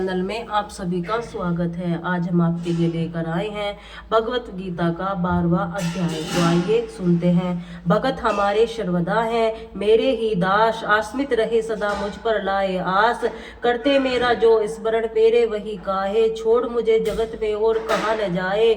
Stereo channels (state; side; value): identical; both; correlation 1.00